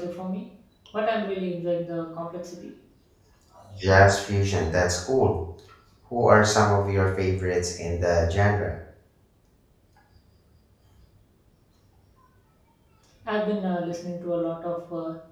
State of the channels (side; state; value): both; identical; correlation 1.00